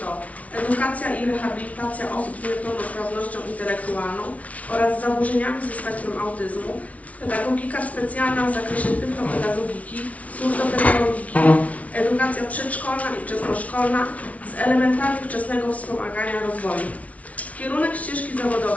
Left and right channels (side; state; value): right; late; 0.067 ms